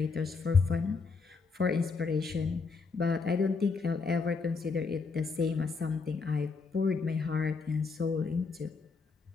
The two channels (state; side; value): quieter; right; 4.6 dB